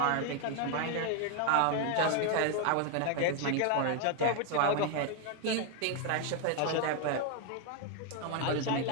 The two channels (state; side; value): different; both; correlation 0.01